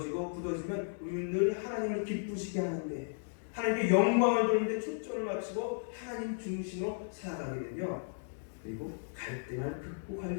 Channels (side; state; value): right; silent; digital silence